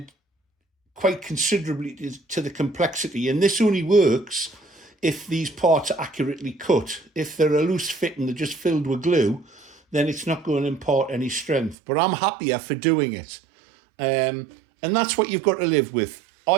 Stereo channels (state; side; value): drops out; left; at 11.8 s